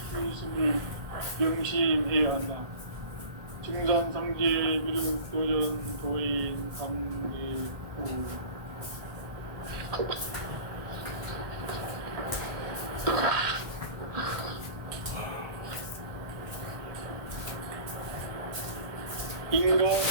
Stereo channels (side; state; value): left; late; 1.3 ms